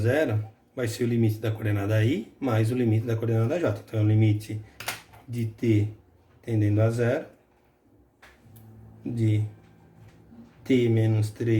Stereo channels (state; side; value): identical; both; correlation 1.00